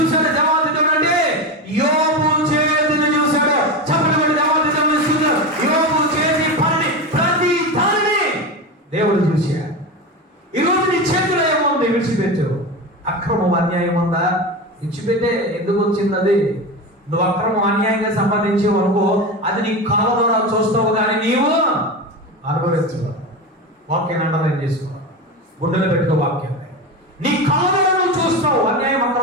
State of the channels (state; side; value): normal; both; correlation 0.21